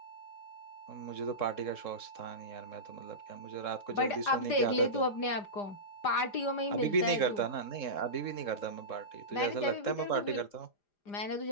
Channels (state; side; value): late; right; 5.0 ms